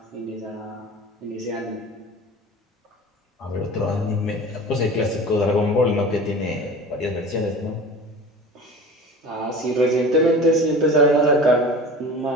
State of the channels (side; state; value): both; normal; correlation 0.37